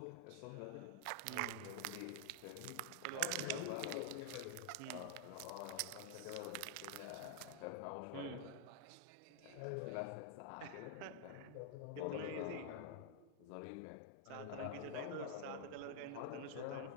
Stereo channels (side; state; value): both; different; correlation 0.00